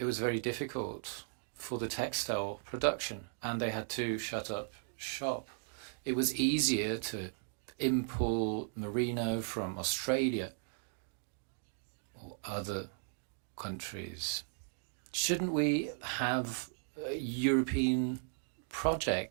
was very difficult for the textile production, and they had to shut up shop. It was easier to import merino from Australia or other countries. Shouldn't we have European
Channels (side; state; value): left; silent; digital silence